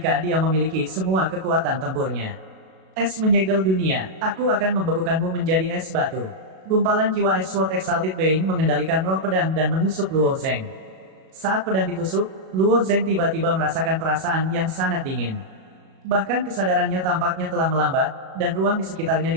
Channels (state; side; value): late; left; 37 ms